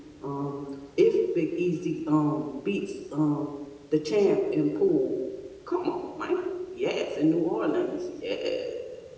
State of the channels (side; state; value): both; identical; correlation 1.00